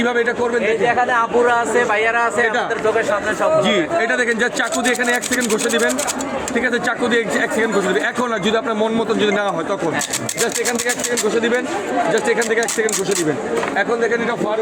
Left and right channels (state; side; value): identical; both; correlation 1.00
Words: এটা করবেন এখানে আপুরা আছে, ভাইয়ারা আছে, আমাদের চোখের সামনে সব। জি এটা দেখেন, যা চাকু দিয়ে এখানে 1 সেকেন্ড ঘষে দিবেন, ঠিক আছে, চাকু দিয়ে 1 সেকেন্ড ঘষে দিবেন। এখন না, যদি আপনার মন মতন যদি না হয় তখন জাস্ট এখান থেকে 1 সেকেন্ড ঘষে দিবেন, জাস্ট এখান থেকে 1 সেকেন্ড ঘষে দিবেন। এখন দেখেন এটা